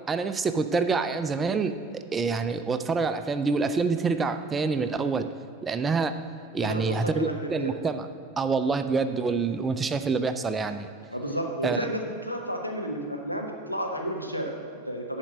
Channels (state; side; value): quieter; left; 3.6 dB